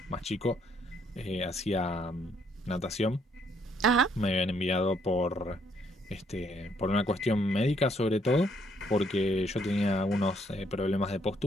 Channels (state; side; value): normal; both; correlation 0.69